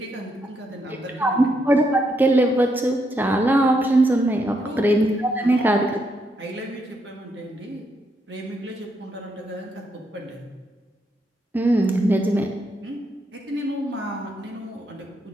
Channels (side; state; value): both; normal; correlation 0.78